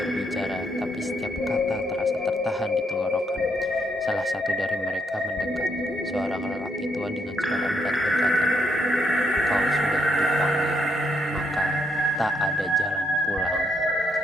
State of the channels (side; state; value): both; normal; correlation 0.75